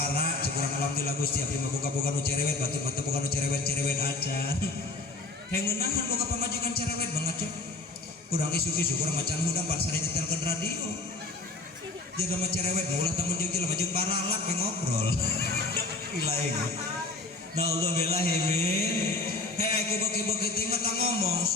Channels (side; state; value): right; quieter; 3.2 dB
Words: cik urang alhamdulillah Gusti abdi mah boga nu cerewet batur mah teu boga nu cerewet acan hengeunangan boga pamajikan cerewet banget cok urang isu-isu urang macan hudang pan sare nyetelkeun radio jaga mah cerewet ulah temen jeung jelema jeung baralak we ngobrol ilaeng naudzubillah min aku beki-beki teh mah ngomong